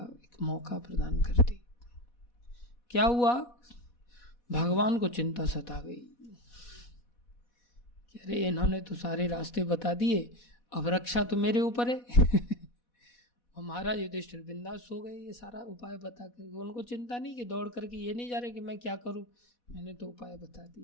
एक मौका प्रदान करती। क्या हुआ, भगवान को चिंता सता गई कि अरे इन्होंने तो सारे रास्ते बता दिए, अब रक्षा तो मेरे ऊपर है। और महाराज युधिष्ठिर बिंदास सो गए ये सारा उपाय बता करके। उनको चिंता नहीं कि दौड़ करके ये नहीं जा रहे कि मैं क्या करूं, मैंने तो उपाय बता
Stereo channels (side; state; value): right; late; 4.1 ms